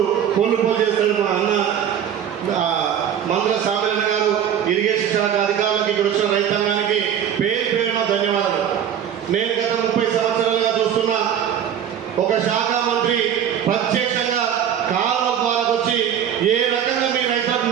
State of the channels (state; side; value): quieter; left; 9.2 dB